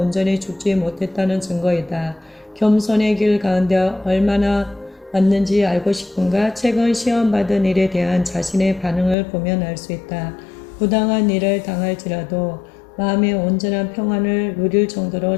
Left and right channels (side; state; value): right; drops out; at 9.2 s